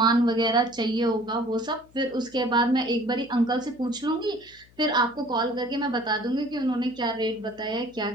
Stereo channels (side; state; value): left; noise; hum, 28 dB below the sound